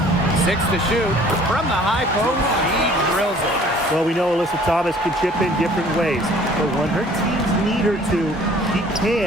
6 to shoot. From the high post, he drills it. Well, we know Alyssa Thomas can chip in different ways, but when her teams need her to, she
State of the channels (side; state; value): both; normal; correlation 0.53